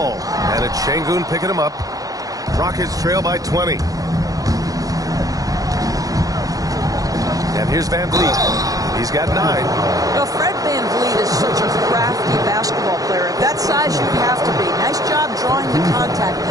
and it's Şengün picking him up. Rockets trail by 20. And here's Van Vliet. He's got 9. Well, Fred Van Vliet is such a crafty basketball player. At that size, you have to be. Nice job drawing the contact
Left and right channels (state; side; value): late; left; 0.17 ms